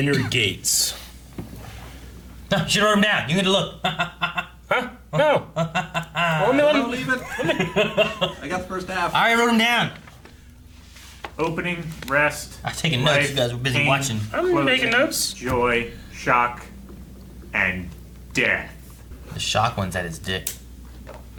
gates. No, she wrote them down. You need to look. Huh? No. Let me Don't leave it. I got the first half. I already wrote them down. Opening, rest. I was taking notes. life, You guys were busy pain, watching. I'm closing, making notes. Joy, shock, and death. The shock one's at his dick.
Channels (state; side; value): identical; both; correlation 1.00